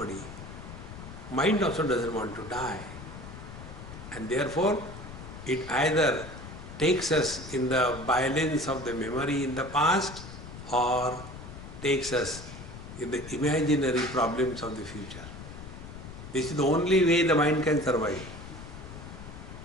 Mind also doesn't want to die. And therefore, it either takes us in the violence of the memory in the past or takes us in the imaginary problems of the future. This is the only way the mind can survive.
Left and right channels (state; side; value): noise; left; rumble, 13 dB below the sound